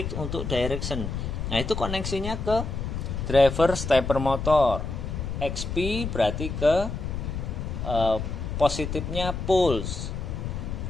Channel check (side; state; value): left; noise; rumble, 4 dB below the sound